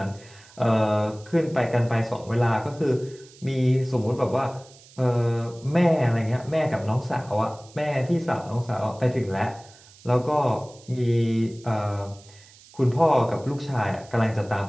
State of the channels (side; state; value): right; noise; hiss, 24 dB below the sound